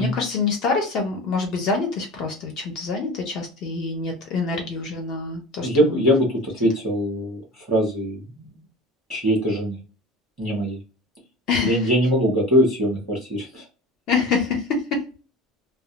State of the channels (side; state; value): both; normal; correlation 0.35